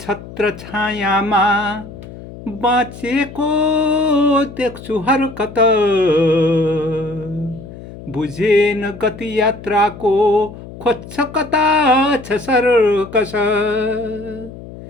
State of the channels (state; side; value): noise; left; hum, 15 dB below the sound